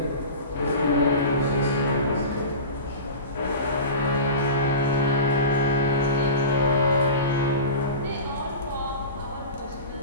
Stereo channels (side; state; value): both; inverted; correlation -0.32